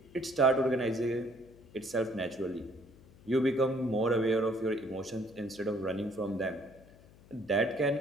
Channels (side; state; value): left; noise; hum, 24 dB below the sound